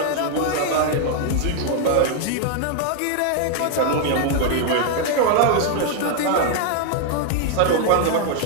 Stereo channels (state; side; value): different; both; correlation 0.00